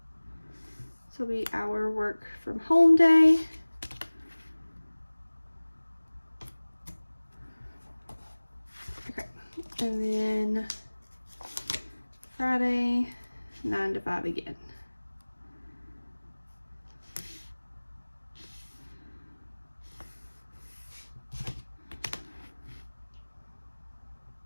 So it'll be our work from home day. Okay, and then Friday, 9 to 5 again.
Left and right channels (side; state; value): both; inverted; correlation -1.00